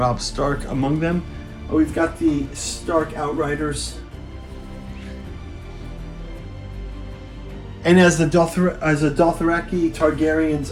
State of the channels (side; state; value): both; identical; correlation 1.00